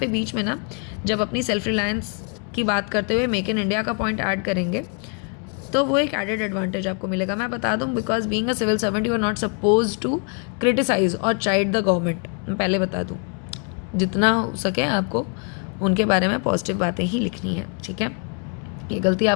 बीच में ना जब अपनी सेल्फ रिलायंस की बात करते हुए मेक इन इंडिया का पॉइंट ऐड करेंगे तो वो एक एडेड एडवांटेज आपको मिलेगा। मैं बता दूँ, because being a civil servant you are not suppose to criticise और चाइड द गवर्नमेंट। मैं पहले बता दूँ, जितना हो सके आपको उनके बारे में पॉजिटिव बातें ही लिखनी है, ठीक है। ये गलती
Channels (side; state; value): right; quieter; 36.2 dB